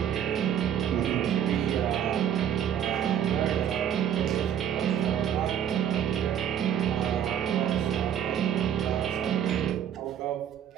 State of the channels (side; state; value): left; quieter; 9.4 dB